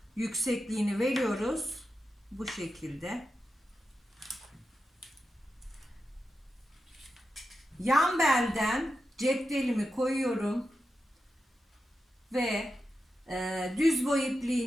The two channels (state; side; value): normal; both; correlation 0.89